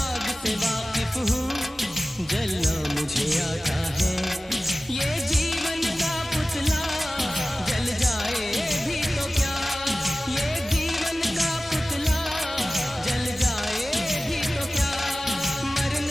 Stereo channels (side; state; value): both; normal; correlation 0.96